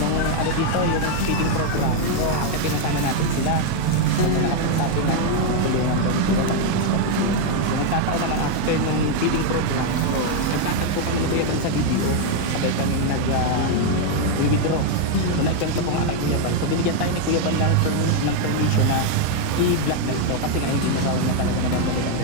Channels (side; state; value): both; different; correlation 0.01